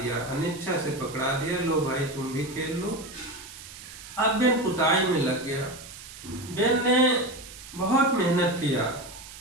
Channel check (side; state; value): right; noise; hiss, 15 dB below the sound